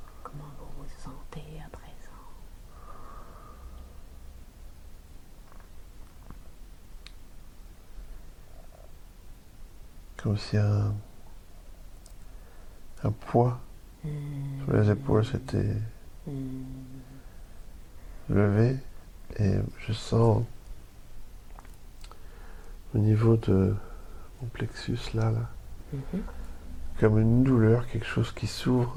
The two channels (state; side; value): identical; both; correlation 1.00